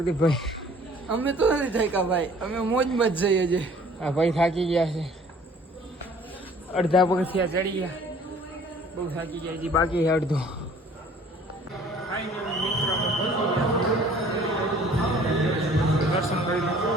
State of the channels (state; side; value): normal; both; correlation 0.53